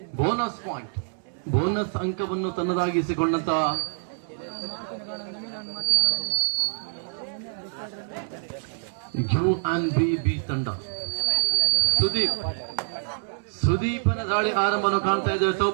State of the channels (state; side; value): silent; left; 61 dB below the other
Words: ಬೋನಸ್ ಪಾಯಿಂಟ್, ಬೋನಸ್ ಅಂಕವನ್ನು ತನ್ನದಾಗಿಸಿಕೊಂಡಂತ UNB ತಂಡ. ಸುದೀಪನ ದಾಳಿ ಆರಂಭವನ್ನು ಕಾಣ್ತಾ ಇದ್ದೇವೆ